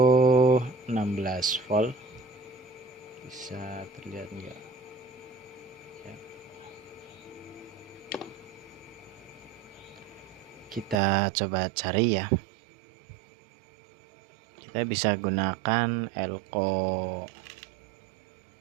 16 volt, bisa terlihat enggak ya. Kita coba cari ya, kita bisa gunakan elko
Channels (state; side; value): drops out; left; at 11.0 s